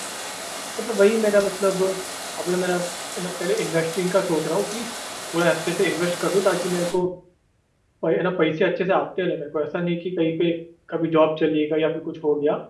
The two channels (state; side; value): identical; both; correlation 1.00